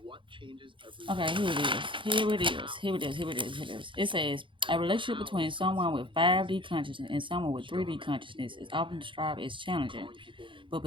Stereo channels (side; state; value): left; late; 0.24 ms